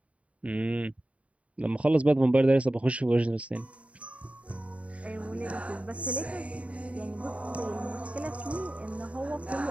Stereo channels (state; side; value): late; left; 0.065 ms